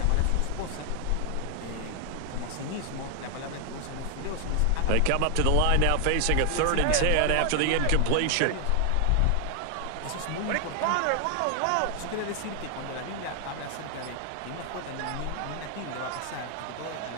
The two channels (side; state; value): both; different; correlation 0.00